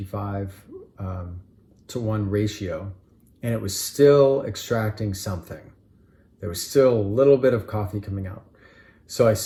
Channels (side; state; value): both; identical; correlation 1.00